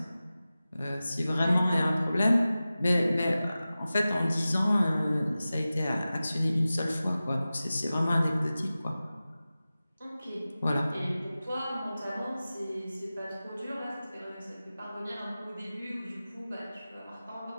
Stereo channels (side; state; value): both; inverted; correlation -0.96